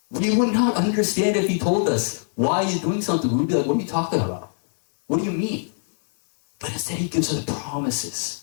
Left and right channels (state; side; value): silent; right; 64 dB below the other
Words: We would not understand if he told us why he's doing something. We'd be like, what are you talking about? What do you mean? But instead he gives us promises.